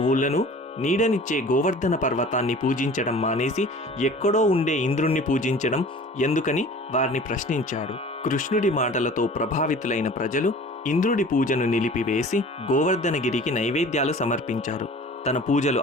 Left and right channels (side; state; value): both; normal; correlation 0.43